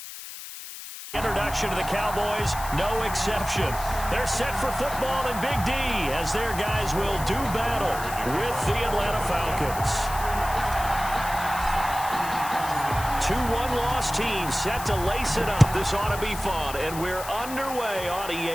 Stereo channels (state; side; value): noise; left; hiss, 11 dB below the sound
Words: Introduction to the Cowboys, no exception. They're set for football in Big D as their guys will do battle with the Atlanta Falcons. 2-1 loss team set to lace it up. This ought to be fun, and we're underway on